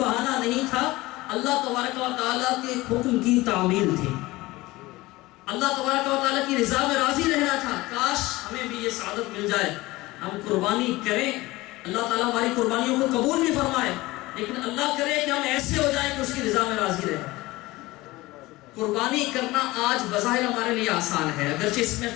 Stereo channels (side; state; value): right; quieter; 19.9 dB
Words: نہیں تھا، اللہ تبارک و تعالیٰ کے حکم کی تعمیل تھی، اللہ تبارک و تعالیٰ کی رضا میں راضی رہنا تھا۔ کاش ہمیں بھی یہ سعادت مل جائے، ہم قربانی کریں، اللہ تعالیٰ ہماری قربانیوں کو قبول بھی فرمائے، لیکن اللہ کرے کہ ہم ایسے ہو جائیں کہ اس کی رضا میں راضی رہیں۔ قربانی کرنا آج بظاہر ہمارے لیے آسان ہے، اگرچہ اس میں